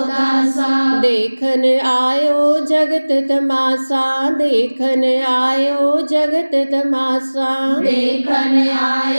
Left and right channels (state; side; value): inverted; both; correlation -1.00